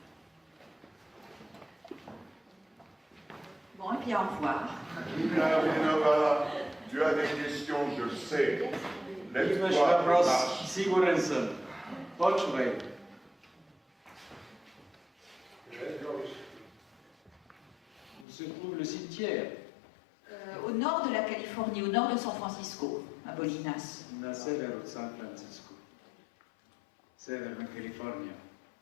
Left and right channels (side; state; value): right; drops out; at 18.2 s